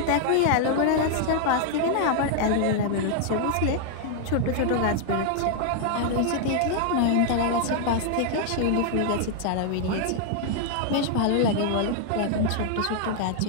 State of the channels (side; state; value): both; different; correlation 0.00